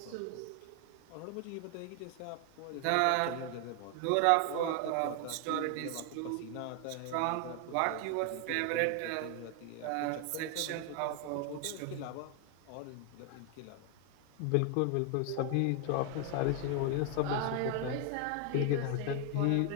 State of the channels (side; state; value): both; different; correlation 0.00